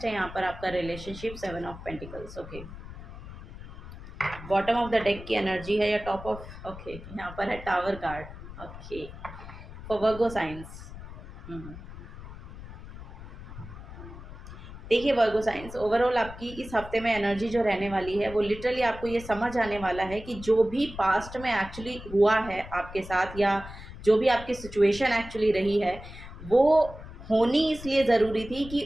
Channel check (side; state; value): left; noise; rumble, 13 dB below the sound